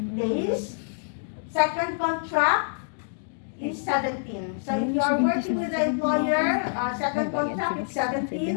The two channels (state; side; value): silent; right; digital silence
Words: days. Second contract is 17. So if you are working with the employer, second contract is